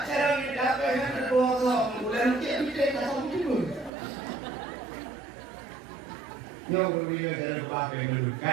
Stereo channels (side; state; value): left; drops out; at 3.9 s